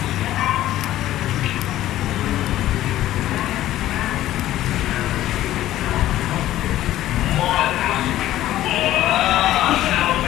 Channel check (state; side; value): quieter; right; 14.0 dB